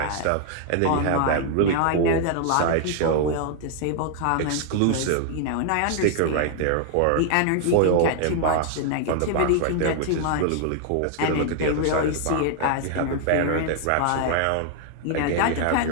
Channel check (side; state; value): both; different; correlation -0.01